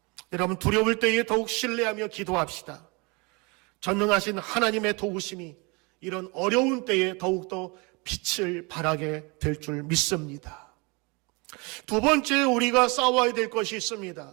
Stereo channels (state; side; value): quieter; left; 28.8 dB